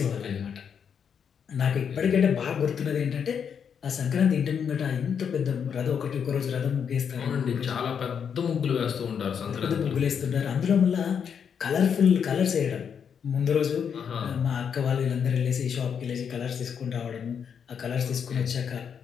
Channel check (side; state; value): right; quieter; 7.3 dB